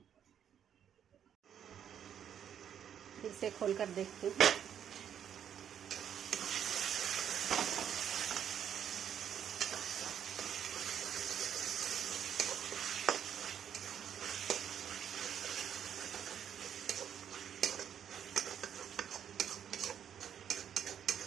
फिर से खोलकर देखते हैं।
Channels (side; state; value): left; quieter; 9.0 dB